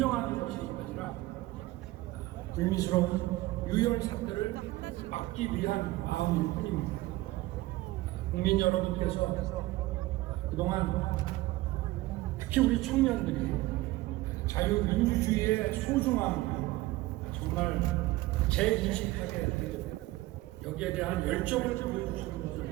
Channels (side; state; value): left; quieter; 18.3 dB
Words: 것이 아니라 불미스러운 유혈 사태를 막기 위한 마음일 뿐입니다. 국민 여러분께서 그동안 특히 우리 청년들이 자유민주주의의 소중함을 정말 재인식하게 되고 여기에 대한 열정을 보여주시는 것을